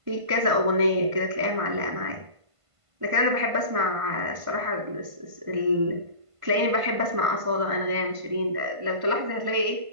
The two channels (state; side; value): late; left; 1.5 ms